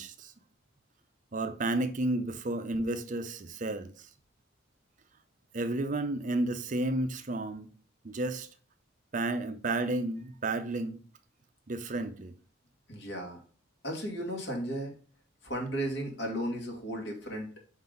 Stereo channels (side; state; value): both; normal; correlation 0.50